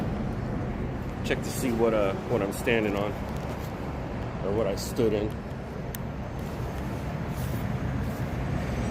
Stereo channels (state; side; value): identical; both; correlation 1.00